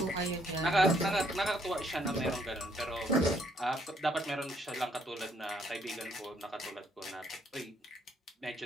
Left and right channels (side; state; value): both; normal; correlation 0.69